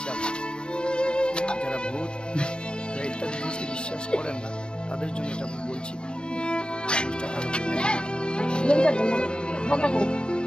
যারা ভূত ইত্যাদি জিনিসকে বিশ্বাস করেন না তাদের জন্য এটা আমি বলছি।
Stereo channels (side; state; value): right; late; 0.051 ms